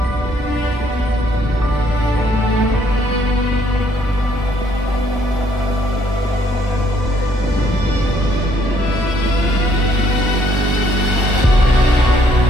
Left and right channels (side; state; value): both; normal; correlation 0.67